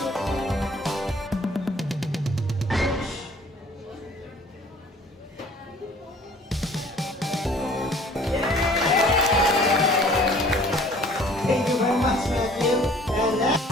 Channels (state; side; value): normal; both; correlation 0.53